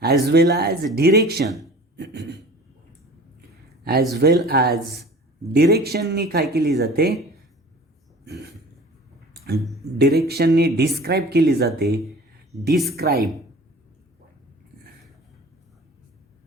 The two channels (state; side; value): normal; both; correlation 0.43